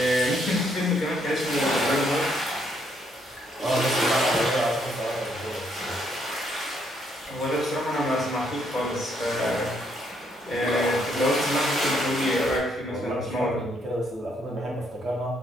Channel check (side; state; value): both; normal; correlation 0.71